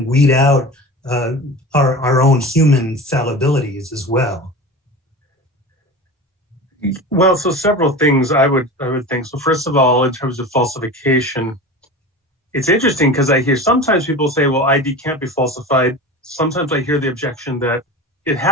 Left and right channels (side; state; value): both; normal; correlation 0.31